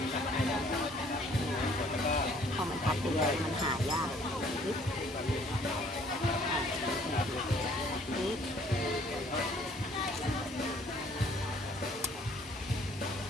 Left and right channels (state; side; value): normal; both; correlation 0.59